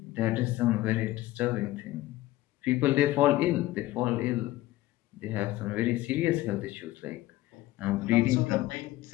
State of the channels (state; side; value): quieter; right; 16.6 dB